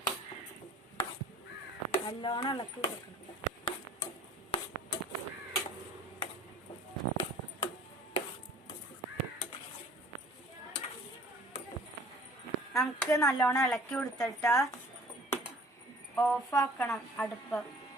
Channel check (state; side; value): normal; both; correlation 0.50